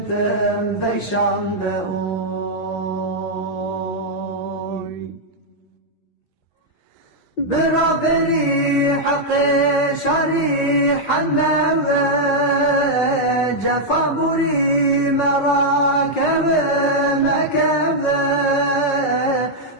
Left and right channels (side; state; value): right; late; 5.5 ms